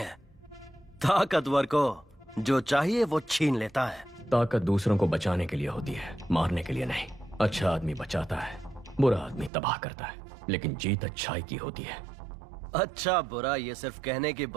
ताकतवर को जो चाहिए वो छीन लेता है। ताकत दूसरों को बचाने के लिए होती है, मारने के लिए नहीं। अच्छा आदमी बचाता है, बुरा आदमी तबाह करता है, लेकिन जीत अच्छाई की होती है। अच्छा बुरा ये सिर्फ कहने की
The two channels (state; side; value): drops out; left; at 9.5 s